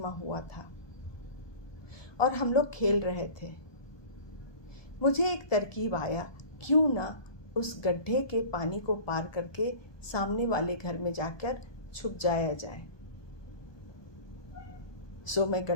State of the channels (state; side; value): late; right; 1.2 ms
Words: हुआ था और हम लोग खेल रहे थे। मुझे एक तरकीब आया, क्यों ना उस गड्ढे के पानी को पार करके सामने वाले घर में जाकर छुप जाया जाए। सो मैं